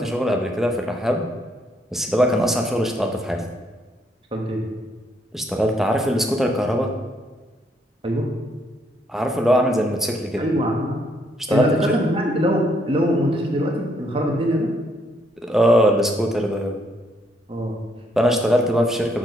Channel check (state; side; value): normal; both; correlation 0.71